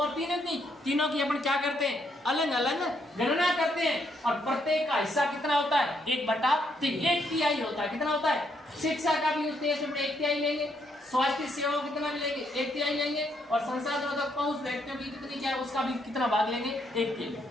3 नहीं, तीनों की अपन क्या करते हैं, अलग अलग गणना करते हैं, और प्रत्येक का हिस्सा कितना होता है, 1/3, 1/3 होता है। कितना होता है, शिक्षा का भी उस देश में 1/3 लेंगे, स्वास्थ्य सेवाओं कितना लेंगे, 1/3 लेंगे, और संसाधनों तक पहुंच व्यक्तियों की कितनी क्या है उसका भी कितना भाग लेंगे, 1/3।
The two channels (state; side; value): normal; both; correlation 0.74